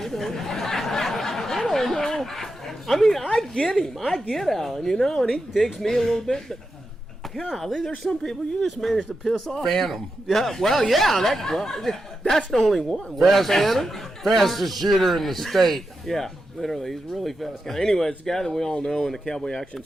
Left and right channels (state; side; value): normal; both; correlation 0.88